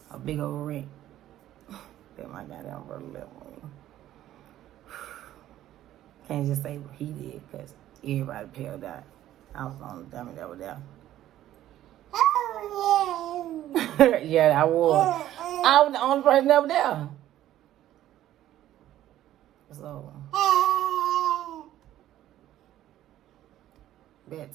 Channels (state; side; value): quieter; left; 13.1 dB